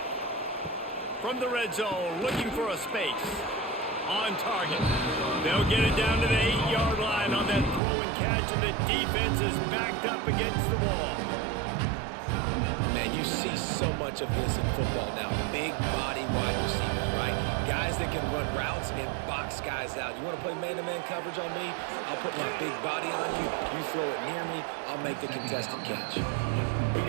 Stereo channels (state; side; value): drops out; left; at 7.8 s